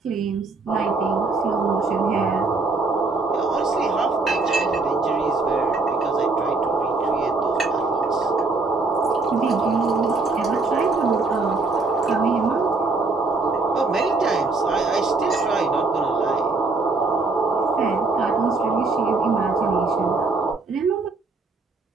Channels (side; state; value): left; quieter; 3.7 dB